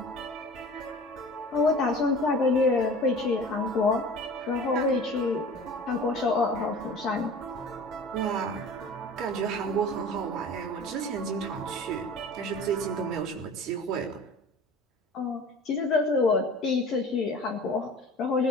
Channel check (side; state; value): both; normal; correlation 0.40